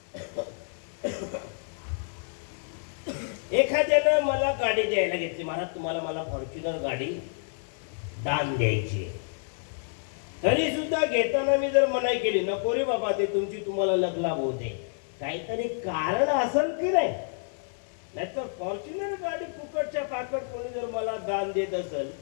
एखाद्यानं मला गाडी द्यायला घेतली, महाराज तुम्हाला मला फॉर्च्युनर गाडी दान द्यायची. तरी सुद्धा घेताना मी जर मनाई केली, नको रे बाबा, ते तुमची तुम्हाला लग्लाभ होते, काहीतरी कारण असेल की नाही? नाहीतर फॉर्च्युनर गाडी फुकटच्या पाकट कोणी जर मला दान देत असेल,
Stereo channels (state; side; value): silent; right; 59 dB below the other